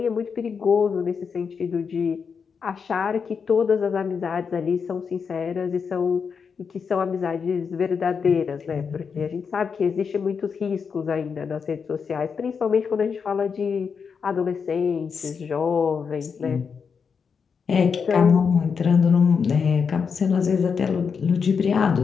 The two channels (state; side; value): quieter; right; 6.0 dB